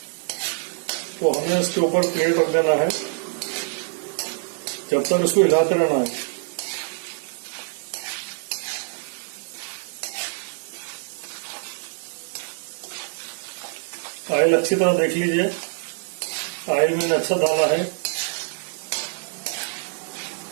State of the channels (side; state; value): left; silent; digital silence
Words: तो हमें इसके ऊपर प्लेट रख देना है। जब तक इसको हिलाते रहना है। ऑयल अच्छी तरह देख लीजिए, ऑयल मैंने अच्छा डाला है